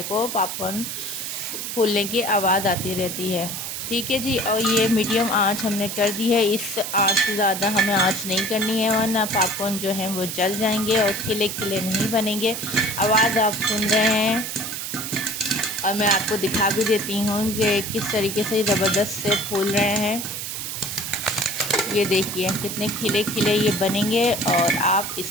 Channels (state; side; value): noise; right; hiss, 5 dB below the sound